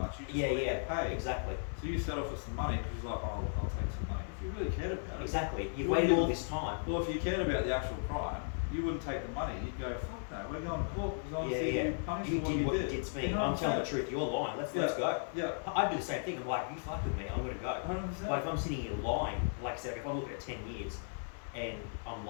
You just want to get paid. Exactly. So you settle for some money because you're like, oh, look, I'll take some money. If you really cared about it. Exactly. You've Well, waited all this time. Well, if you cared about the actual crime, you wouldn't take the money. You'd go, fuck no, we're going to court because I want to see you punished You for did what you did. did to me. You know I'm what telling the saying? truth. You're lying. Let's go. Yeah. I'd do the same thing. I'm like, you fucked with me. I'm gonna go. 100%. Like if I'm sitting here lying, like I said, if I'm looking at 10 years and I'm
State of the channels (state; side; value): silent; right; 54 dB below the other